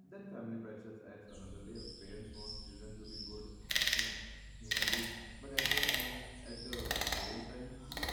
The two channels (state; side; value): identical; both; correlation 1.00